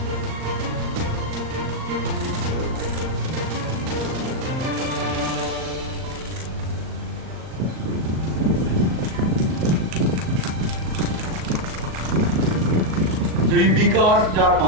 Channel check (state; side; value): late; left; 38 ms